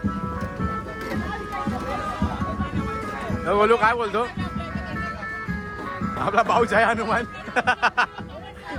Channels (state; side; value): identical; both; correlation 1.00